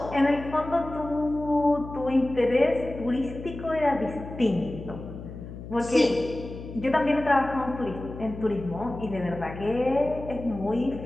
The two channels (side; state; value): left; noise; hum, 12 dB below the sound